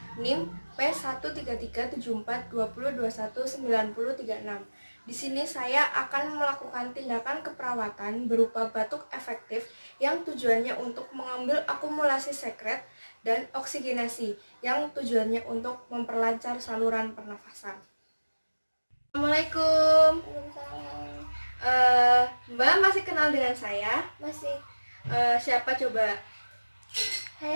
NIM P1337420219036. Di sini saya akan melakukan tindakan keperawatan berupa batuk efektif yang tujuannya untuk mengambil akumulasi sekret dan oksigenasi yang tujuannya untuk memperlancar saluran pernafasan. Assalamualaikum. Mbak masih kenal dengan saya? Masih. Siapa coba?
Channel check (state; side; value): inverted; both; correlation -1.00